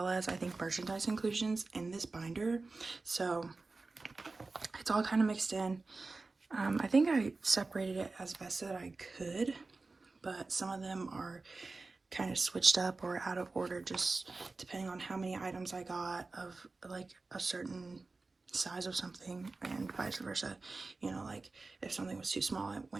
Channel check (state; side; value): quieter; left; 3.7 dB